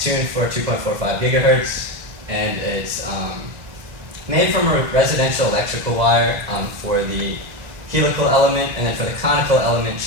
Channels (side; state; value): left; late; 2.0 ms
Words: tuned for 2.45 gigahertz, and it's made from a residential electrical wire for the helical element, and then for the conical element,